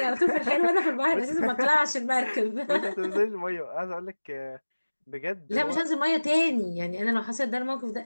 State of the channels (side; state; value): both; inverted; correlation -1.00